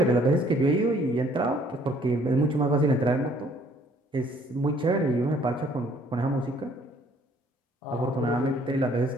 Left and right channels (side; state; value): both; normal; correlation 0.60